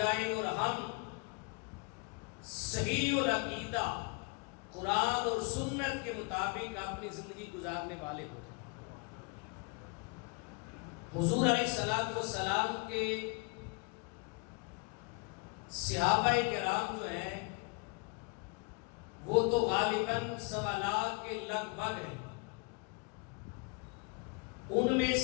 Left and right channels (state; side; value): quieter; right; 31.1 dB